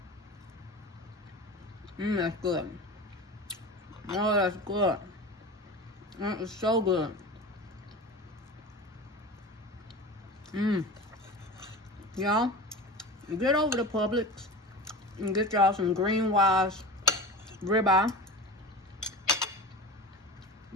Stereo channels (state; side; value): normal; both; correlation 0.31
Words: That's good. Oh, that's good. That is so good. Y'all, get over to Publix and get y'all some Green Wise ribeye.